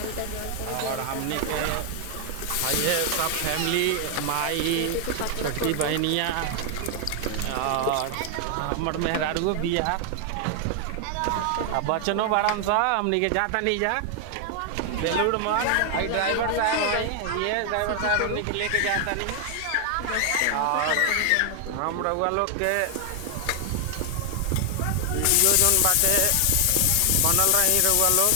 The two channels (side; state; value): both; different; correlation 0.00